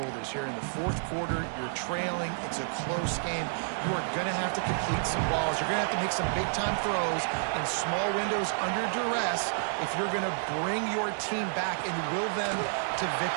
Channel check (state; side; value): silent; left; digital silence